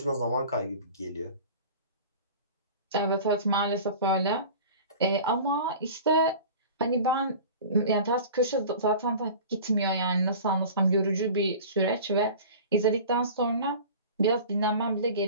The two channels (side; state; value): both; inverted; correlation -0.39